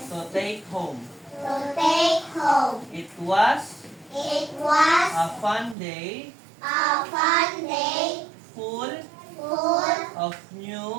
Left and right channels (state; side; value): drops out; left; at 5.8 s